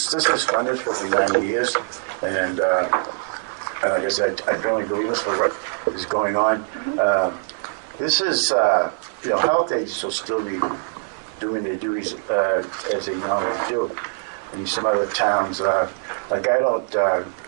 funded for the 90 years, and like I said, I firmly believe this for what is going on. This is, health agents will still be doing their duties as they normally do. In some other towns, like I don't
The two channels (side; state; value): left; silent; digital silence